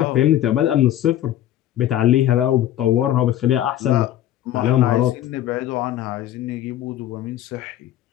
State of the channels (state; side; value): quieter; right; 12.4 dB